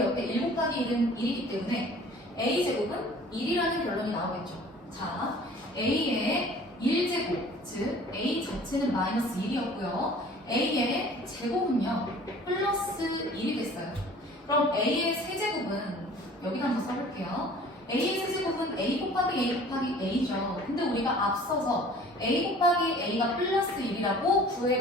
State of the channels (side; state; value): both; normal; correlation 0.48